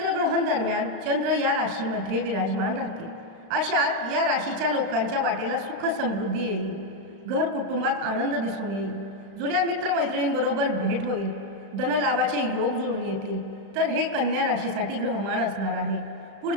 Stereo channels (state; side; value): late; left; 36 ms